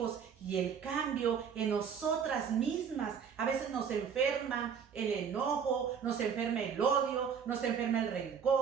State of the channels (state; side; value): quieter; left; 7.1 dB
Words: y el cambio en nosotras mismas. A veces nos enferma el enojo, nos enferma el odio, nos enferma el